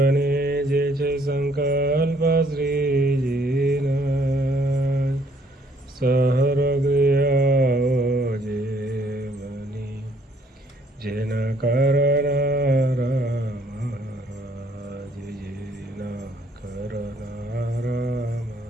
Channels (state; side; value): normal; both; correlation 0.65